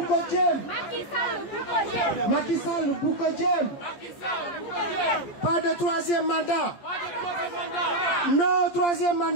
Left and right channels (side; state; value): right; late; 14 ms